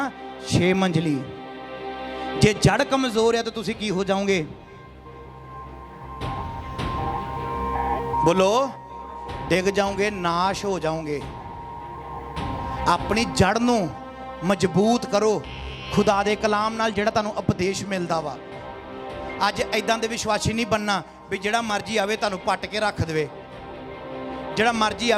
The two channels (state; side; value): identical; both; correlation 1.00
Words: 6 ਮੰਜ਼ਲੀ। ਜੇ ਜੜ ਕਮਜ਼ੋਰ ਆ ਤਾਂ ਤੁਸੀਂ ਕੀ ਹੋ ਜਾਓਗੇ? ਬੋਲੋ, ਡਿੱਗ ਜਾਓਗੇ, ਨਾਸ਼ ਹੋ ਜਾਓਗੇ। ਆਪਣੀ ਜੜ ਨੂੰ ਮਜ਼ਬੂਤ ਕਰੋ ਖੁਦਾ ਦੇ ਕਲਾਮ ਨਾਲ, ਜਿਹੜਾ ਤੁਹਾਨੂੰ ਉਪਦੇਸ਼ ਮਿਲਦਾ ਵਾ। ਅੱਜ ਐਦਾਂ ਦੇ ਵਿਸ਼ਵਾਸੀ ਨਹੀਂ ਬਣਨਾ ਵੀ ਜਿਹੜਾ ਮਰਜ਼ੀ ਆਵੇ ਤੁਹਾਨੂੰ ਪੱਟ ਕੇ ਰੱਖ ਦੇਵੇ, ਜਿਹੜਾ ਮਰਜ਼ੀ